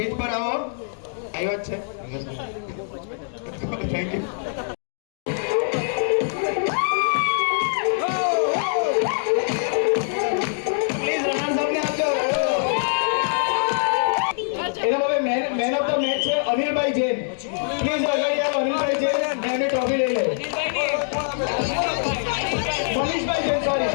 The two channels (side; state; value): right; silent; digital silence